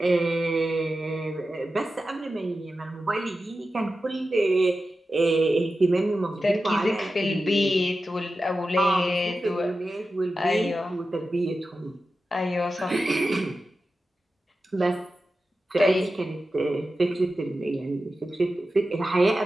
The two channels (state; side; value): normal; both; correlation 0.92